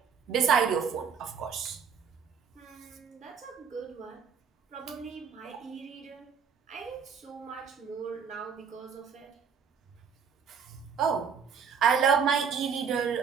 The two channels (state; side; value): quieter; left; 6.6 dB